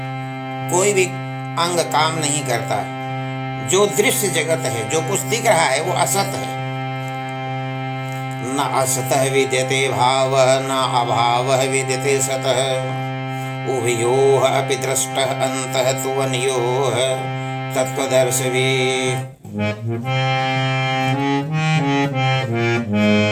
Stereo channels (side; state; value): both; identical; correlation 1.00